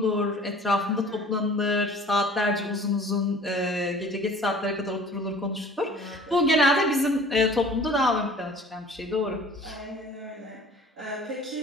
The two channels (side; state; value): both; normal; correlation 0.47